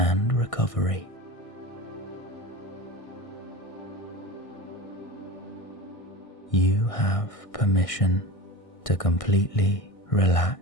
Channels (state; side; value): late; right; 1.6 ms